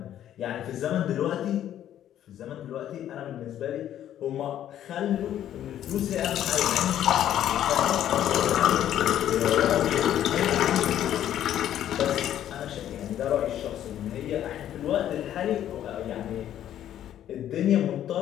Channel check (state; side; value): quieter; right; 11.2 dB